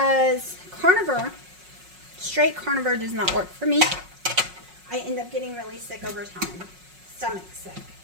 carnivore, straight carnivore does not work for me. I end up getting really sick over time. Stomach sick.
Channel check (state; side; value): late; left; 5.5 ms